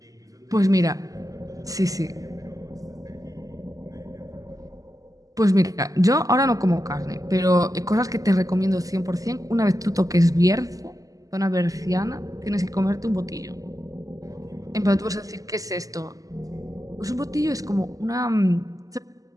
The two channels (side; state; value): left; late; 0.17 ms